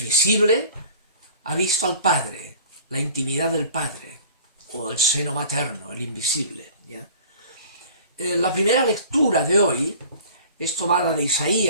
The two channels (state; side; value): inverted; both; correlation -0.46